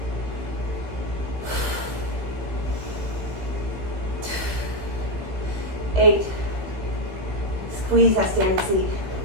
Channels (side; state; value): left; late; 16 ms